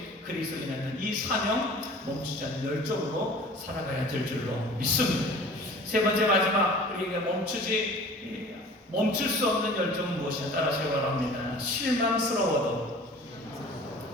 그리스도인은 이 사명 멈추지 않는 열정으로 살아가야 될 줄로 믿습니다. 세 번째 마지막 우리에게 멈출 수 없는 열정은 무엇이냐? 따라서 바랍니다. 실망스러워도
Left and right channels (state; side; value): normal; both; correlation 0.45